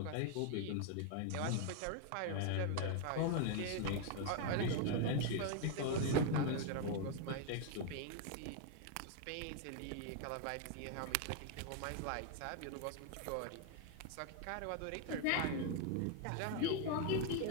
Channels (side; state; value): both; different; correlation 0.00